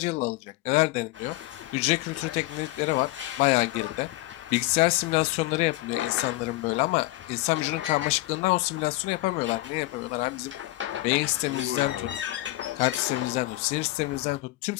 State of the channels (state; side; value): quieter; right; 18.6 dB